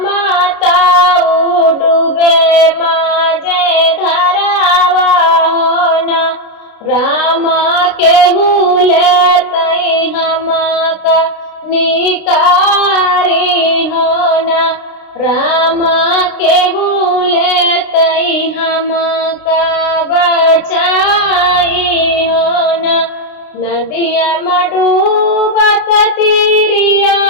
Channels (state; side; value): late; right; 32 ms